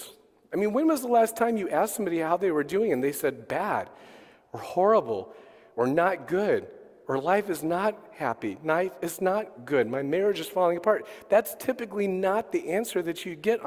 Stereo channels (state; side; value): identical; both; correlation 1.00